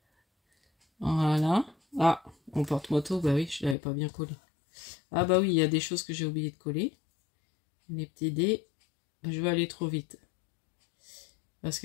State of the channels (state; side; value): drops out; right; at 3.8 s